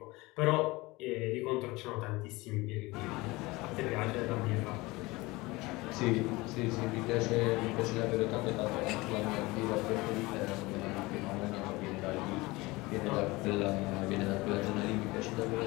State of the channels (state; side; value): quieter; right; 22.0 dB